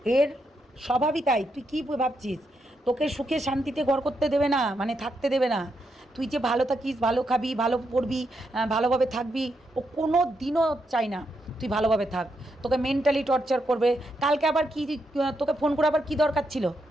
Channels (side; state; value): both; normal; correlation 0.81